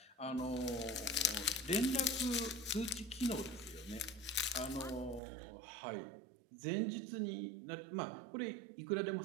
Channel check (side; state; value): left; drops out; at 5.2 s